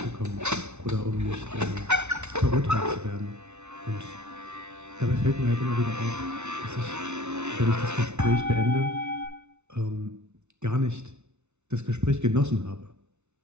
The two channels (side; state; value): left; late; 0.82 ms